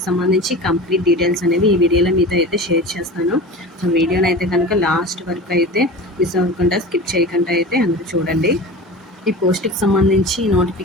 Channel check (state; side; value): normal; both; correlation 0.33